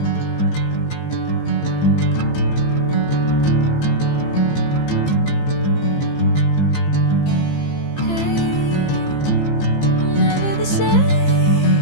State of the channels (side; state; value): right; late; 15 ms